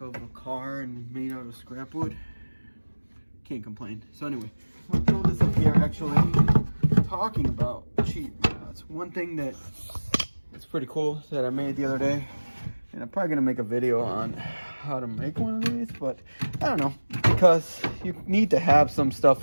a car and made out of scrap wood, can't complain. So anyway, I'm gonna throw this up here. Actually, talking about cheap rods, one thing that is pretty cool that I made the other day, and I'm probably gonna make a video on how to make one of these, but I don't know, because you need to have some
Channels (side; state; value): both; inverted; correlation -1.00